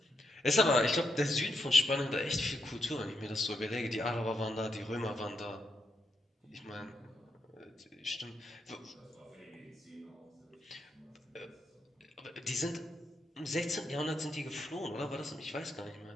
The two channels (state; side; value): normal; both; correlation 0.81